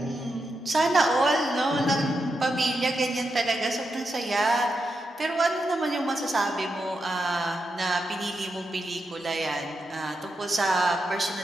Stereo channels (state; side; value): normal; both; correlation 0.86